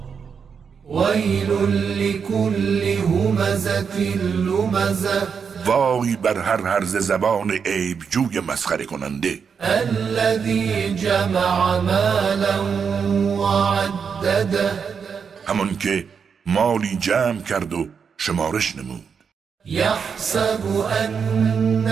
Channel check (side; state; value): left; quieter; 6.4 dB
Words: ویل لکل همزة لمزة، وای بر هر هرز زبان عیب جوی مسخره کننده، الذی جمع مالا وعدده، همان که مالی جمع کرد و شمارش نمود. یحسب